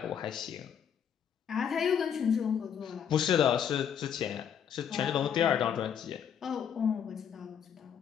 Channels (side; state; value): right; quieter; 8.3 dB